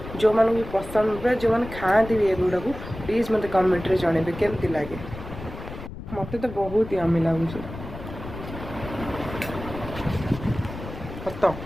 जो मानू भी पसंद जो मैंने खाती भी एगुड़ा को प्लीज मत कमेंट रे जनइबे केमती लगे मत तो बहुत ही यम्मी लगुच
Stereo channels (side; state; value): left; noise; rumble, 11 dB below the sound